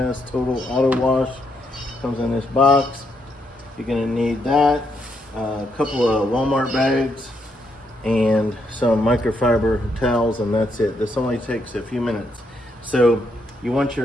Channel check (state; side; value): normal; both; correlation 0.77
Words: Auto Wash. Comes in this box. You're going to need that, a couple of Walmart bags, and some microfiber towels, and that's it. This only takes a few minutes. So you want